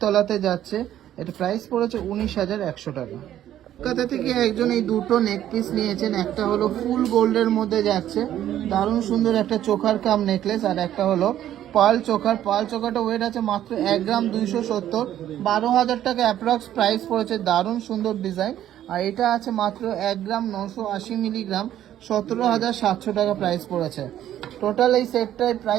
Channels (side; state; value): left; quieter; 11.8 dB